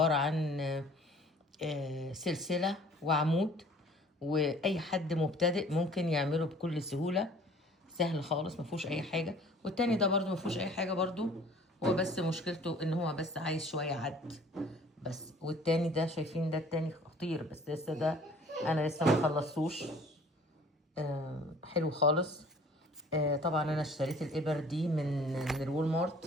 عن سلسلة وعمود، واي حد مبتدئ ممكن يعمله بكل سهولة، سهل خالص مفهوش اي حاجة. والتاني ده برضو مفهوش اي حاجة برضو، هو بس مشكلته ان هو بس عايز شوية عد بس. والتاني ده شايفين ده التاني خطير، بس لسه ده انا لسه مخلصوش. حلو خالص. طبعا انا اشتريت الابر دي من الوول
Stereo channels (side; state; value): both; normal; correlation 0.51